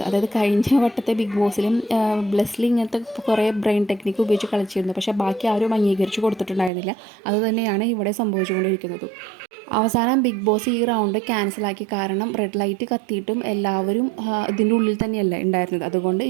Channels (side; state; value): left; drops out; at 6.7 s